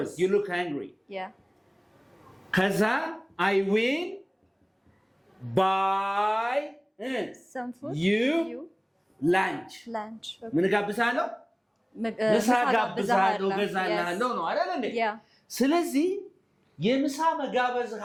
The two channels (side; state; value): both; identical; correlation 1.00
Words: you look hungry yeah ከዛ I will buy some food you lunch okay. ምን ጋብዛለሁ ምሳ ጋብዛለሁ ገዛልሃለሁ ነው አይደል እንዴ ስለዚህ የምሳ መጋበዝ